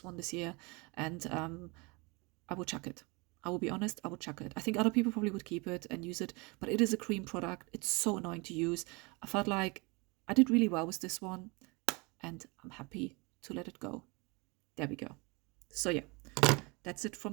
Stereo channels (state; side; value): quieter; left; 27.9 dB